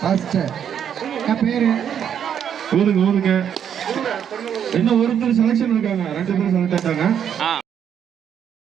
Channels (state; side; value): quieter; left; 8.6 dB